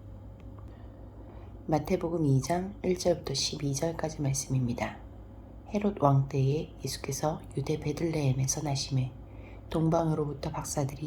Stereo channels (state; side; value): identical; both; correlation 1.00